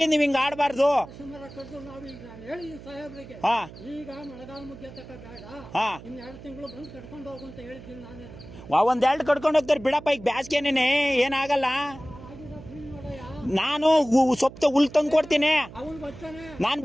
ನೀವ್ ಹಿಂಗ ಆಡ್ಬಾರ್ದು ಒಂದ್ ಎರಡು ಕಡ್ಕೊಂಡು ಹೋಗ್ತಾರೆ ಬಿಡಪ್ಪ ಈಗ ಬ್ಯಾಸ್ಗೆನೇನೆ ಏನಾಗಲ್ಲ ನಾನು ಸೊಪ್ಪು ಹುಲ್ ತಂದು ಕೊಡ್ತೀನಿ ನಾನು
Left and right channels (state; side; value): noise; right; hum, 16 dB below the sound